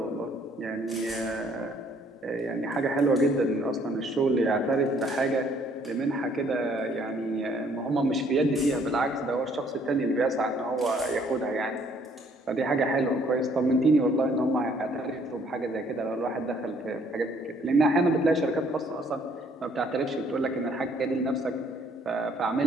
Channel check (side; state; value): both; normal; correlation 0.63